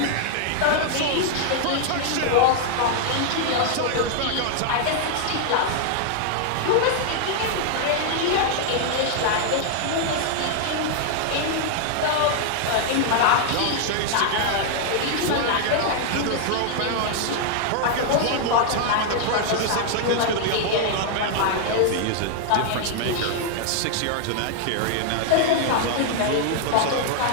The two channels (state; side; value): different; both; correlation 0.00